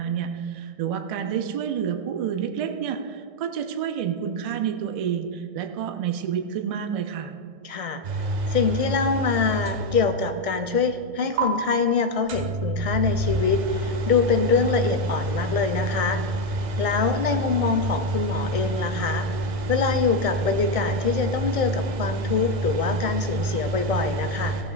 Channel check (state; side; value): late; left; 1.6 ms